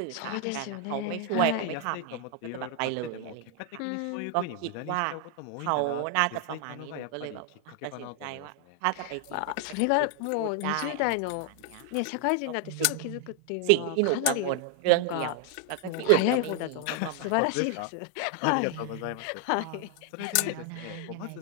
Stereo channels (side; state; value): both; different; correlation 0.00